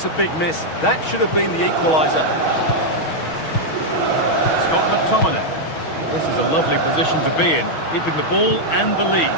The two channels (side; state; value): right; late; 6.3 ms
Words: a big miss. That should have been the equaliser. Scott McTominay. This is a lovely position to be in, keeping the ball and the lead.